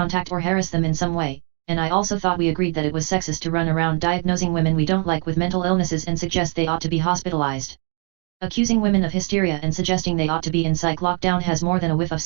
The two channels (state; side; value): quieter; left; 35.7 dB